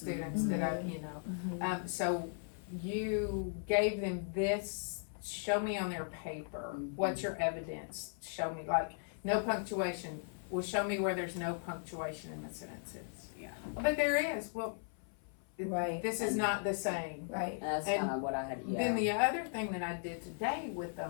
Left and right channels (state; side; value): silent; right; 53 dB below the other